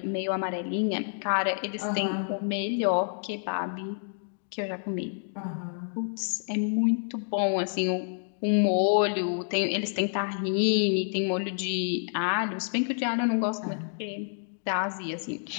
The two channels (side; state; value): right; silent; digital silence